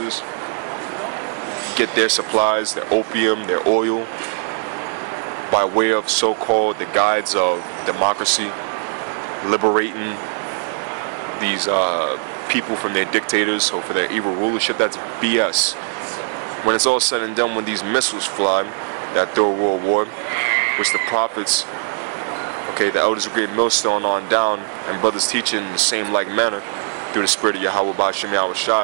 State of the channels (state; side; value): silent; left; 55 dB below the other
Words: get their supplies, their opium, their oil, by way of so-called the guides of democracy, liberating these people from their dictators or for their evil rulership. That's BS. When it's all said and done, when these missiles fly, that third world war, which the prophets, okay, the elders of great millstone on down, and brothers teaching in the same like manner through the spirit of Yahweh Ba'Shem Yahweh